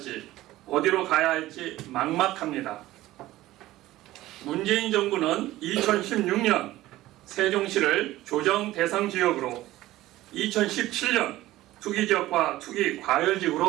어디로 가야 할지 막막합니다. 문재인 정부는 2016년 세종시를 조정 대상 지역으로 2017년 투기지역과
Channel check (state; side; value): quieter; left; 16.2 dB